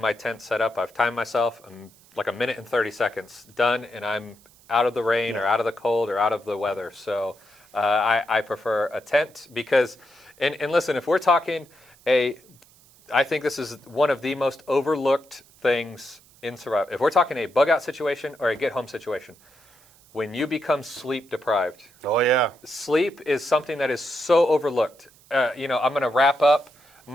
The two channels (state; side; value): noise; right; hiss, 28 dB below the sound